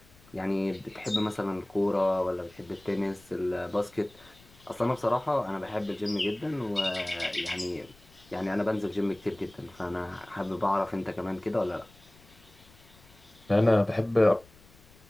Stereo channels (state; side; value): noise; left; rumble, 26 dB below the sound